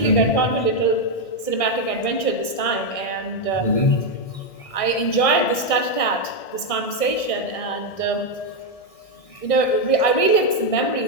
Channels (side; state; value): right; late; 1.6 ms